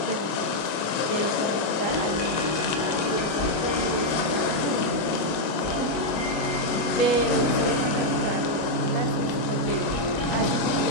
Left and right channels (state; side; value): late; right; 25 ms